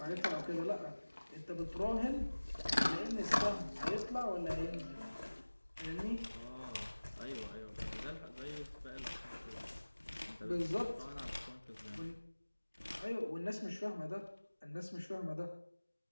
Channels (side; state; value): both; inverted; correlation -1.00